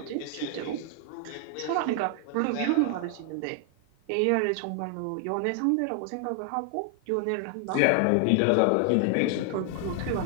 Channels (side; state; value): both; different; correlation 0.00